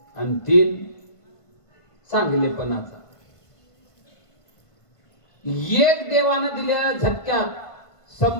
आणि 3 चांगलेपणाचा. एक देवानं दिलेल्या झटक्यात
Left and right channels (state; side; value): late; right; 1.5 ms